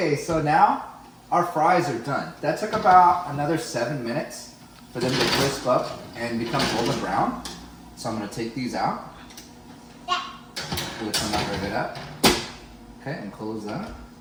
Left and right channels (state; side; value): identical; both; correlation 1.00